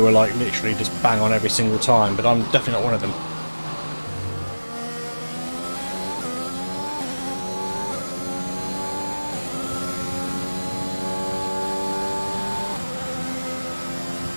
are like literally just bang on every single time, but I'm definitely not one of them.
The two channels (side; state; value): both; inverted; correlation -1.00